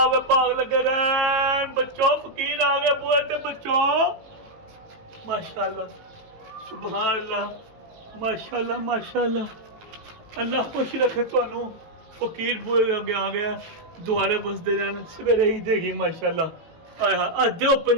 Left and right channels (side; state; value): left; late; 18 ms